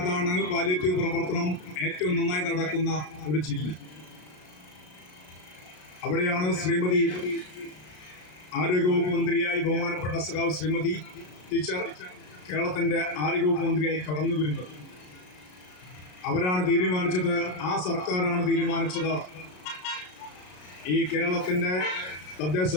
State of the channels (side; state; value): right; late; 33 ms